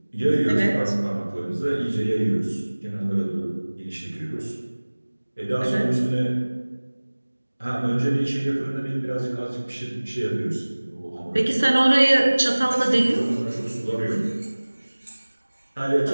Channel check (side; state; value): both; inverted; correlation -1.00